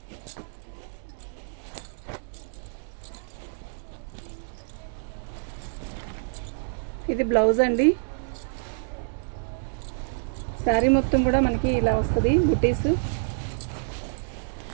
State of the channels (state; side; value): silent; left; digital silence